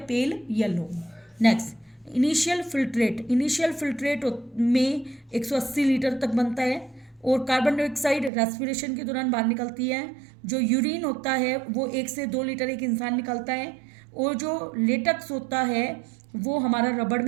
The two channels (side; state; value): left; drops out; at 8.3 s